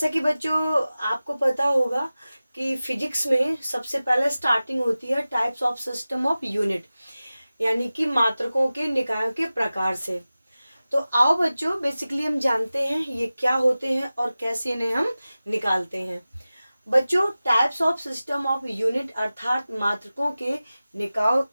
कि बच्चों आपको पता होगा कि फिजिक्स में सबसे पहले स्टार्टिंग होती है types of system of unit, यानी कि मात्रकों के निकायों के प्रकार से। तो आओ बच्चों, बेसिकली हम जानते हैं ये क्या होते हैं और कैसे इन्हें हम निकालते हैं। बच्चों, types of system of unit अर्थात मात्रकों के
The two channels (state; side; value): inverted; both; correlation -0.96